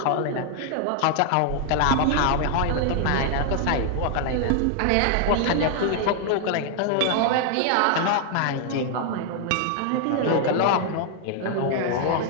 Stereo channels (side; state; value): both; different; correlation 0.00